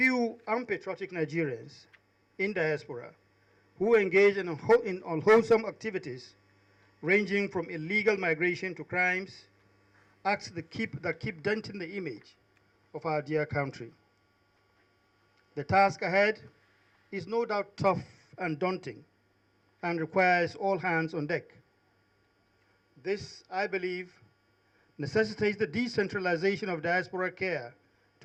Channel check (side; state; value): both; identical; correlation 1.00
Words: unpatriotic Nigerians in diaspora who engage in unwholesome activities ranging from illegal migration to crimes, acts that keep denting the image of our dear country. The task ahead is no doubt tough and daunting and requires all hands on deck. This, I believe, necessitates the decentralization of diaspora care